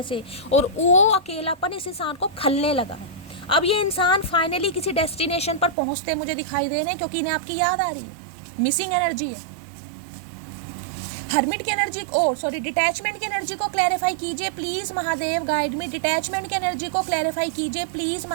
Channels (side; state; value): left; drops out; at 5.8 s